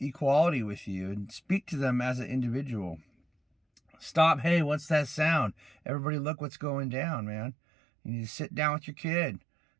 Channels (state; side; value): drops out; left; at 5.8 s